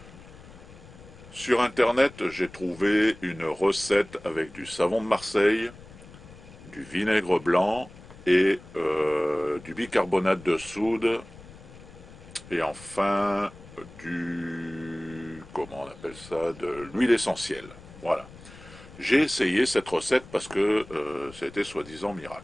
Sur Internet, j'ai trouvé une recette avec du savon de Marseille, du vinaigre blanc et du bicarbonate de soude et enfin comment on appelle ça, de l'huile essentielle. Voilà. J'ai essayé cette recette parce que c'était soi-disant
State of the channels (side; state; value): left; noise; rumble, 19 dB below the sound